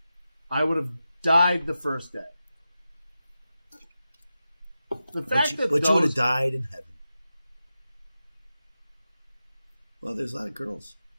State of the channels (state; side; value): inverted; both; correlation -0.91